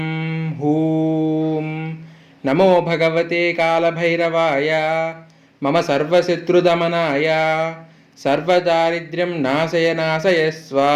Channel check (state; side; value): identical; both; correlation 1.00